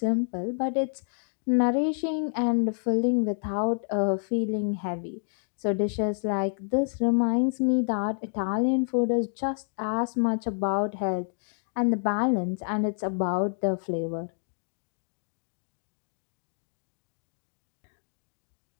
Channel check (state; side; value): silent; right; digital silence